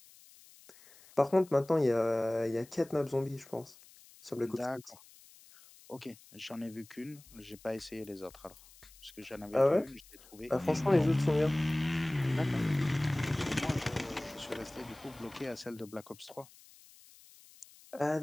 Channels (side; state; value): left; noise; hiss, 23 dB below the sound